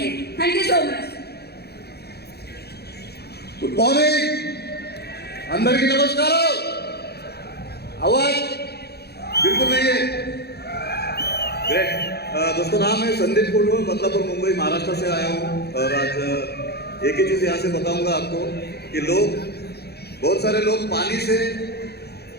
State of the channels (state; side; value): late; right; 0.47 ms